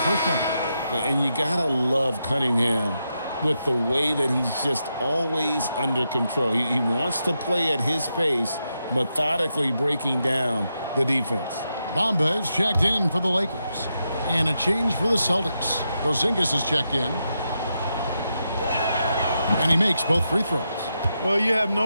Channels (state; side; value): inverted; both; correlation -0.85